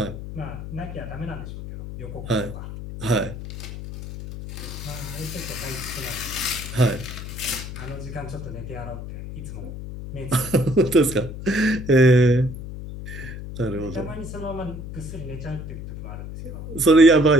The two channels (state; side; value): noise; left; hum, 9 dB below the sound